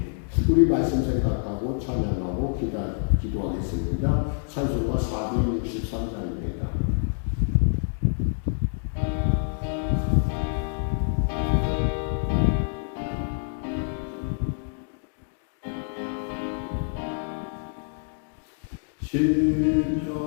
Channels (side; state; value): right; silent; digital silence